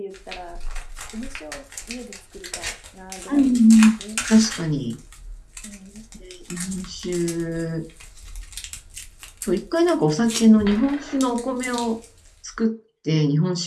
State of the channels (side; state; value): both; identical; correlation 1.00